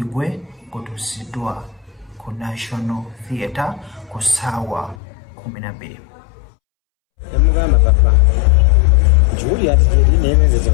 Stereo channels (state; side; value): drops out; right; at 5.0 s